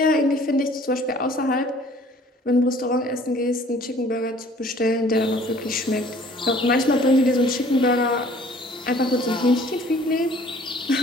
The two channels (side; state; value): both; normal; correlation 0.54